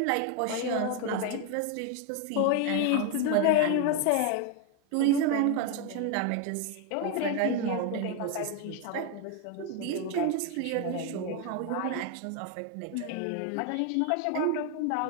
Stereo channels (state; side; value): different; both; correlation 0.01